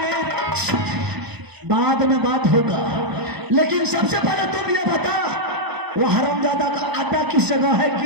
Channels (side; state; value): left; late; 1.0 ms